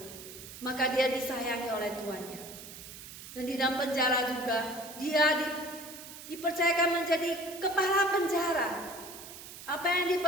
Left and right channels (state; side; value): noise; right; hiss, 14 dB below the sound